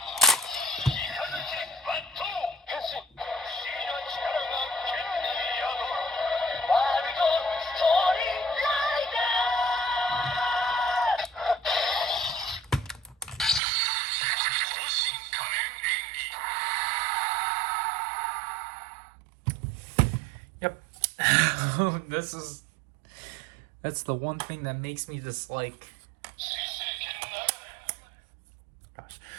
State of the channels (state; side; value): drops out; left; at 13.6 s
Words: Yep. That's the one thing that makes me dislike,